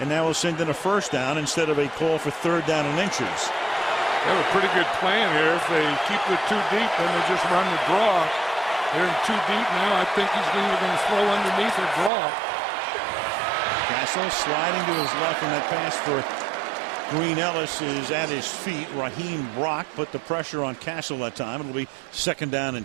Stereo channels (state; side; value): drops out; left; at 12.1 s